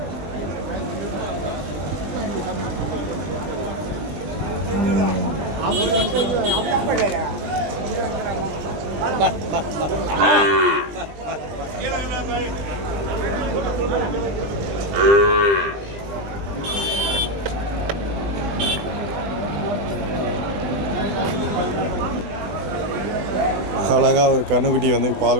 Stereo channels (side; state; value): left; late; 20 ms